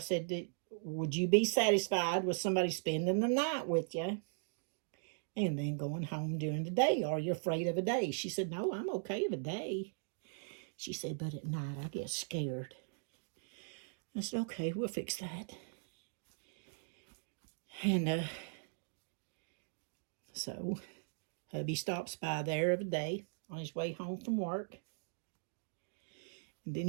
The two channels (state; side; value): silent; left; digital silence